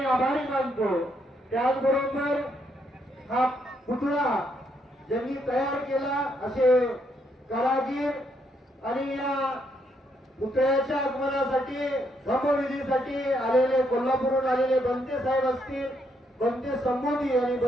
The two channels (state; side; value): normal; both; correlation 0.75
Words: आभारी मानतो. त्याचबरोबर हा पुतळा ज्यांनी तयार केला असे कारागीर आणि या पुतळ्याच्या आगमनासाठी धम्मविधीसाठी आलेले कोल्हापूरहून आलेले बनते साहेब असतील, बनते संबोधी आणि